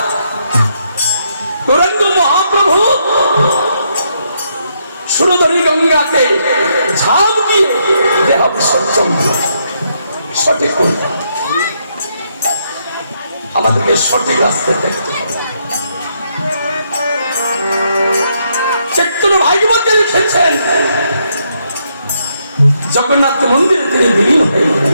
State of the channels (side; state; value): both; inverted; correlation -0.76